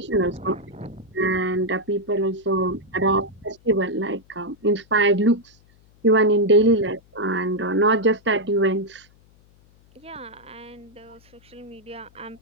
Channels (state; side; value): noise; left; hum, 30 dB below the sound